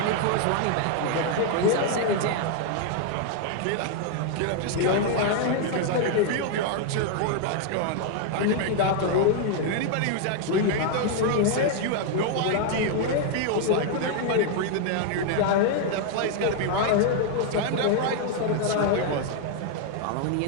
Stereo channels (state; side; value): different; both; correlation 0.00